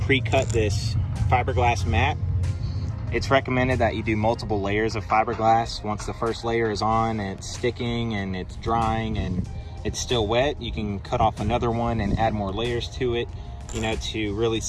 pre-cut this fiberglass mat. It's recommended that you do multiple layers of fiberglass. Once the first layer is on and it's sticking and it's drying and it's still wet, you can cut off another one and add more layers to it, to really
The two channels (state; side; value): identical; both; correlation 1.00